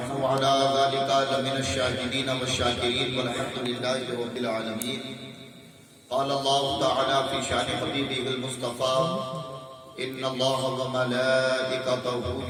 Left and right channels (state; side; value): identical; both; correlation 1.00